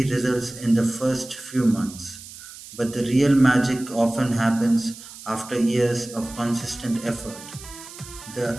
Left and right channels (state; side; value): noise; right; hiss, 16 dB below the sound